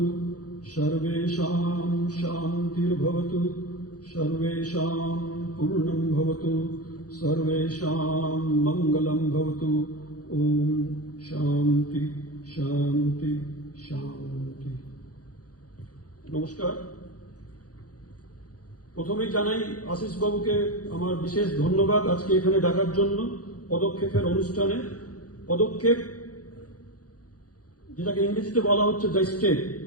সর্বেষাং শান্তির্ভবতু, সর্বেষাং পূর্ণং ভবতু, সর্বেষাং মঙ্গলং ভবতু। ওম শান্তি শান্তি শান্তি। নমস্কার। প্রথমেই জানাই আশিস বাবুকে আমার বিশেষ ধন্যবাদ আজকে এখানে ডাকার জন্য। পদক্ষেপের অনুষ্ঠানে পদক্ষেপ, যেটাকে ইংরেজিতে বলা হচ্ছে দ্য স্টেপ।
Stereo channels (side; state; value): right; late; 0.67 ms